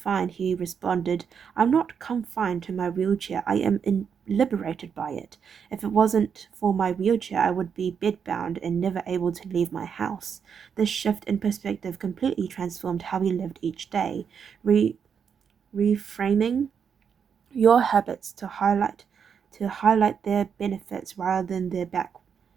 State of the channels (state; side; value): quieter; left; 7.0 dB